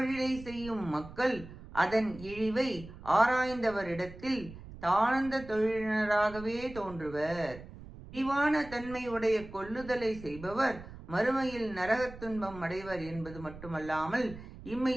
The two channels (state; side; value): noise; right; rumble, 15 dB below the sound